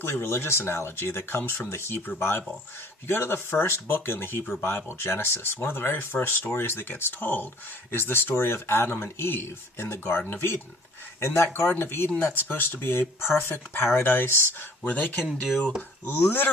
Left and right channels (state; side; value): normal; both; correlation 0.51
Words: religious analogy that comes from the Hebrew Bible. If you go to the first book in the Hebrew Bible, Genesis, one of the very first stories that gets told is the story of Adam and Eve in the Garden of Eden. In that Garden of Eden, that's supposed to be a perfect paradise where they can do